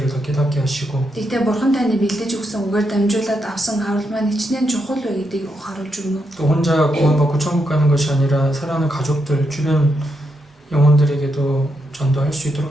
더 깨닫게 하시고 Тэгтээ бурхан таны бэлдэж өгсөн үгээр дамжуулаад авсан аврал маань хичнээн чухал вэ гэдгийг харуулж өгнө. 또 혼자 구원받고 천국 가는 것이 아니라 사랑하는 가족들, 주변 영혼들에게도 전도할 수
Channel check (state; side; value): normal; both; correlation 0.82